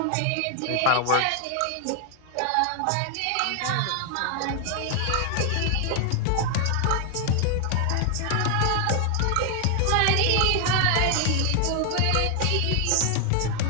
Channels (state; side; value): different; both; correlation 0.00